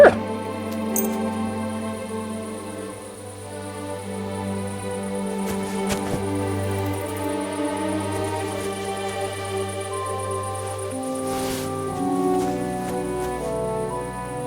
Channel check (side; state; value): both; identical; correlation 1.00